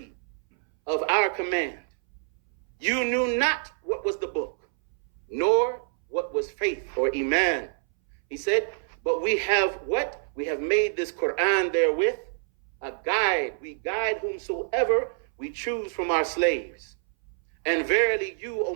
of our command. You knew not what was the book, nor what was faith or iman. He said, but we have what? We have made this Quran therewith a guide. We guide whomsoever we choose from our slaves. And verily you, O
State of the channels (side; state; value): left; silent; 60 dB below the other